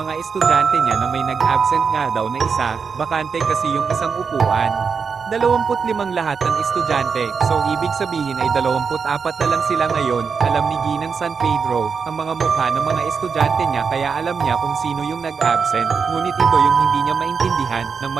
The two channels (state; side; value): quieter; left; 5.7 dB